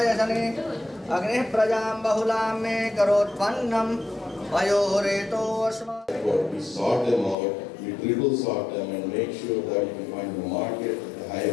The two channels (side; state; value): right; drops out; at 7.4 s